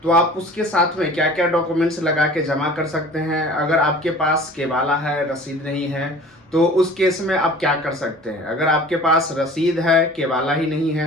तो आप उसके साथ में क्या क्या डॉक्यूमेंट्स लगा के जमा कर सकते हैं। अगर आपके पास केवाला है, रसीद नहीं है, तो उस केस में आप क्या कर सकते हैं। अगर आपके पास रसीद है, केवाला ही नहीं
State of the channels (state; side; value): normal; both; correlation 0.44